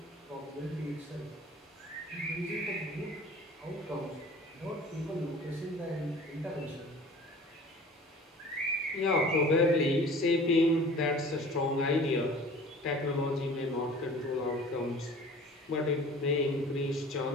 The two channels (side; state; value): both; normal; correlation 0.45